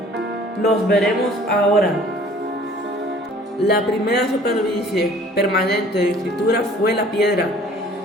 los veremos ahora. La primera superficie permanente de escritura fue la piedra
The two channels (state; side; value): normal; both; correlation 0.52